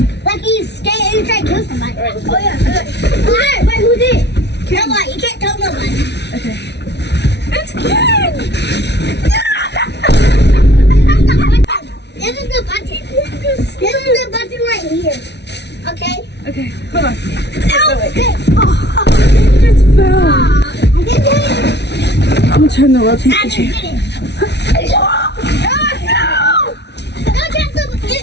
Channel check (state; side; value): late; right; 0.50 ms